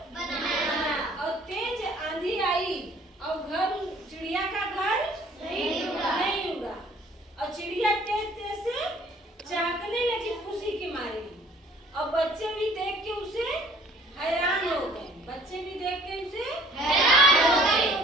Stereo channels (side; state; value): both; normal; correlation 0.55